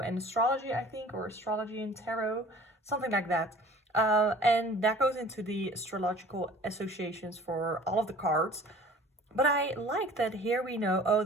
astrology, I think, or astrology and tarot, something like that. And that goes into the astrological associations for all of the cards. But I like that here we know,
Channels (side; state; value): both; normal; correlation 0.48